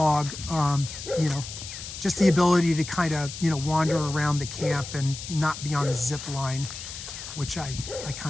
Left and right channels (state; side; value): noise; left; hiss, 10 dB below the sound